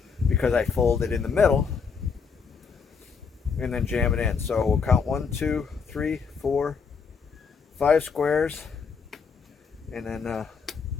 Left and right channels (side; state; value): right; quieter; 5.7 dB